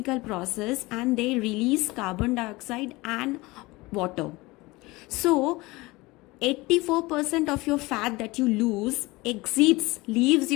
process and they release carbon dioxide and water. So 84% of your fat that you lose leaves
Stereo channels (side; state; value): right; quieter; 22.0 dB